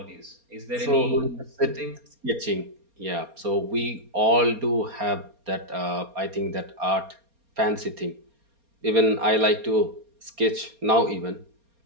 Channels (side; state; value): left; late; 4.3 ms